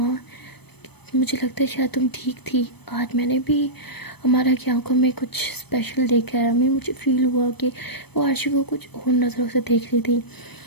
मुझे लगता है शायद तुम ठीक थी, आज मैंने भी हमारा की आंखों में कुछ स्पेशल देखा है, हमें मुझे फील हुआ कि वो आरशी को कुछ और नज़रों से देख रही थी।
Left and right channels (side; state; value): right; late; 0.98 ms